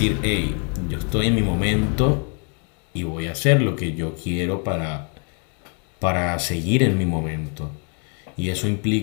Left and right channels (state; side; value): quieter; right; 39.6 dB